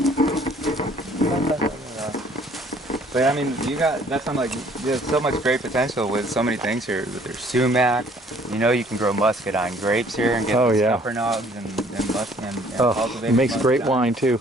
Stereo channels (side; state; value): both; normal; correlation 0.59